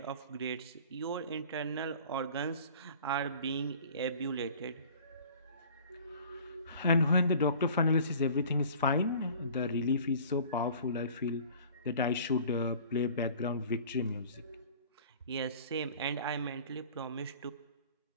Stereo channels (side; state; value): both; inverted; correlation -0.46